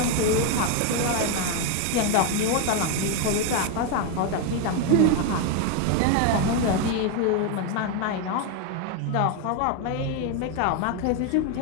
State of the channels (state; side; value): different; both; correlation 0.01